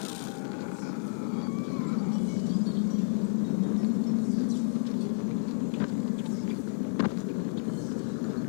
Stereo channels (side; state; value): right; silent; 58 dB below the other